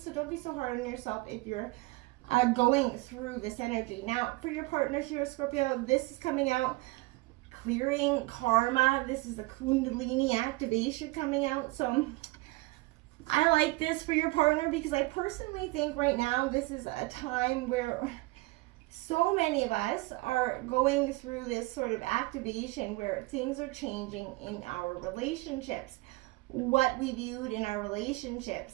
So don't be so hard on yourself if you're going through this energy. Now, for your partner here, Scorpio, this is coming out, clearing karma. This is the Kundalini activation coming out. So I like this for your partner because I personally think right now this is a time where so many of us are going through this sort of activation where things are changing in our relationships. What we viewed in our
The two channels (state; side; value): quieter; left; 22.5 dB